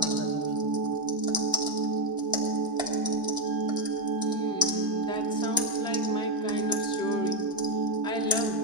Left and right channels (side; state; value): both; normal; correlation 0.07